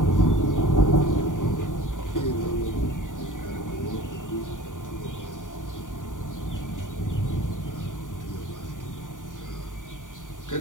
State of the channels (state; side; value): late; right; 0.87 ms